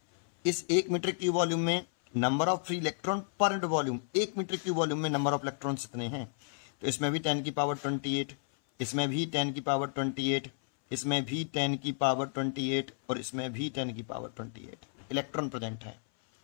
इस 1 मीटर क्यूब वॉल्यूम में number of free electron per unit volume, 1 metre cube volume में नंबर ऑफ इलेक्ट्रॉन कितने हैं? तो इसमें भी 10 की पावर 28, इसमें भी 10 की पावर 28, इसमें भी 10 की पावर 28 और इसमें भी 10 की पावर 28 इलेक्ट्रॉन प्रेजेंट है।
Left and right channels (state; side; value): silent; right; 56 dB below the other